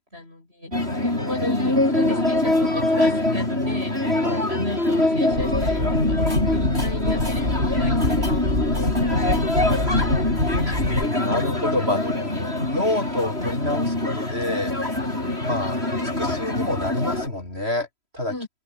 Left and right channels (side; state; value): left; late; 3.0 ms